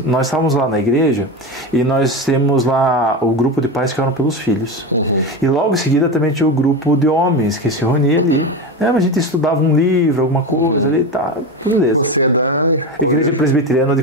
nós estávamos lá na igreja e nós temos lá o grupo de pais que oram pelos filhos. E logo em seguida também tinha o grupo de homens que se reunia ali. A gente estudava um livro, alguma coisa ali, tá, beleza. Você é da Igreja Presbiteriana de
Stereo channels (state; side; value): normal; both; correlation 0.20